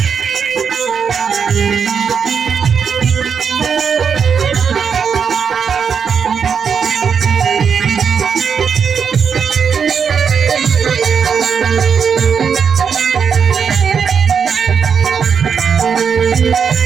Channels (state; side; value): quieter; left; 6.6 dB